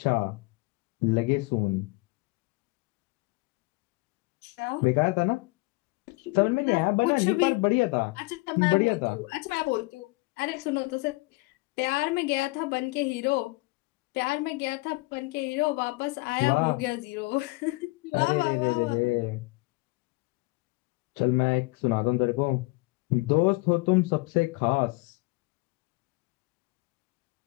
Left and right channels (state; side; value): quieter; right; 24.4 dB